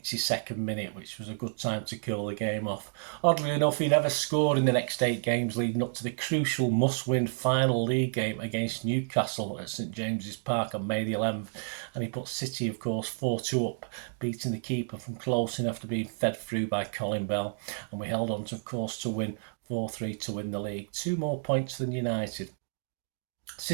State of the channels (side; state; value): left; silent; digital silence